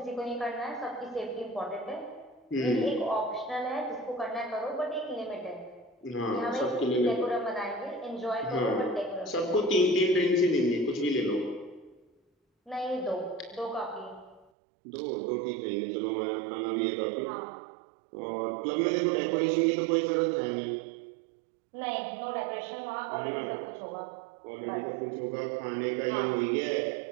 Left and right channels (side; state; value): left; drops out; at 14.5 s